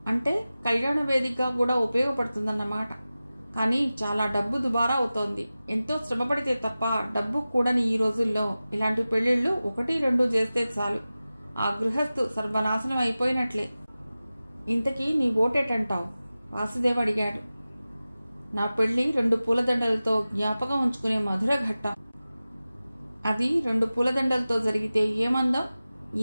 అంటే కళ్యాణ వేదికగా కూడా ఉపయోగపడుతుందన్నమాట. కానీ చాలా డబ్బు దుబారా అవుతోంది. ఎంతో శ్రమపడితే తప్ప డబ్బు కూడని ఈ రోజుల్లో ఇలాంటి పెళ్లిళ్లు 1-2 చేస్తే చాలు, ఆ గృహస్థు సర్వనాశనం అయిపోయినట్లే. ఇంతకీ నీ ఓటేటంటావు? వాసుదేవ్ అడిగాడు. నా పెళ్లి 2 పూలదండలతో జ్ఞాపకం ఉంచుకునే మధుర ఘట్టం. అది 2 పూలదండలతో జరిగితే ఏమందం,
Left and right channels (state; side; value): inverted; both; correlation -0.96